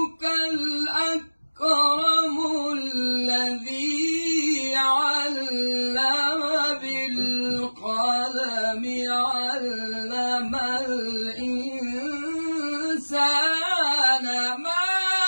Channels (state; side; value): inverted; both; correlation -1.00